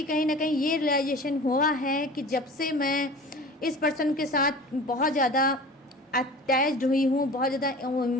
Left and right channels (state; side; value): normal; both; correlation 0.39